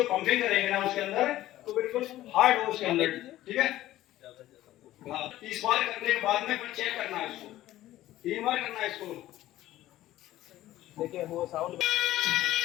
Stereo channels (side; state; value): right; quieter; 14.8 dB